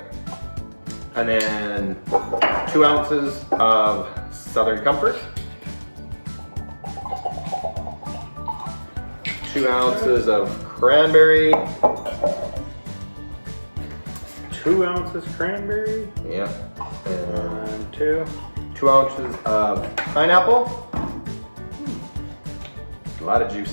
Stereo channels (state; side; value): inverted; both; correlation -1.00